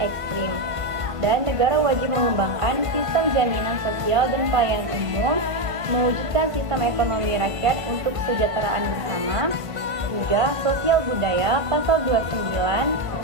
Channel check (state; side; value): late; left; 1.5 ms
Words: Dan negara wajib mengembangkan sistem jaminan sosial dan pelayanan umum, mewujudkan sistem ekonomi rakyat untuk kesejahteraan bersama. 3. Sosial budaya, pasal 29